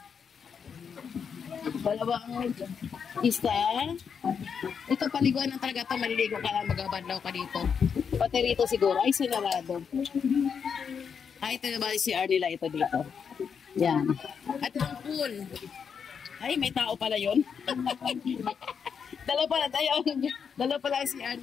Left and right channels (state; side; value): quieter; right; 6.7 dB